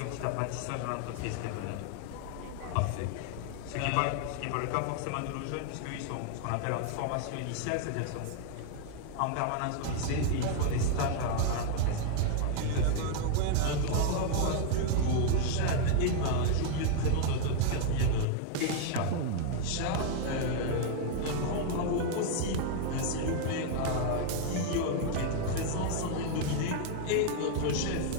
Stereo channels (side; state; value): both; different; correlation 0.00